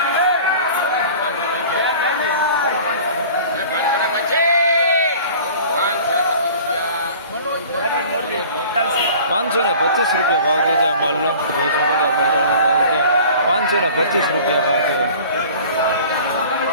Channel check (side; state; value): both; inverted; correlation -0.44